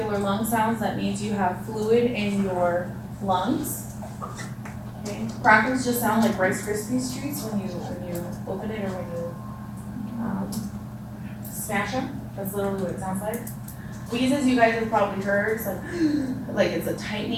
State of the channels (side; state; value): both; identical; correlation 1.00